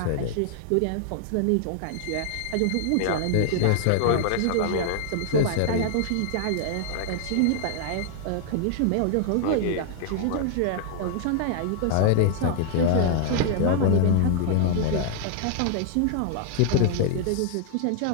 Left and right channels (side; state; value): both; different; correlation -0.01